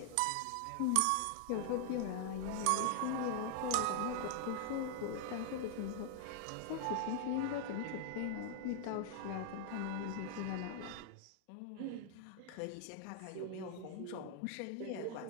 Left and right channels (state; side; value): different; both; correlation 0.00